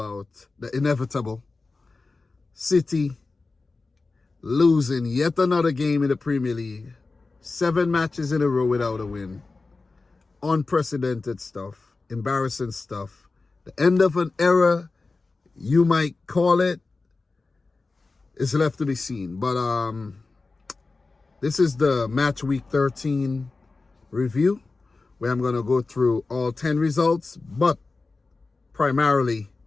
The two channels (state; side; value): quieter; right; 3.7 dB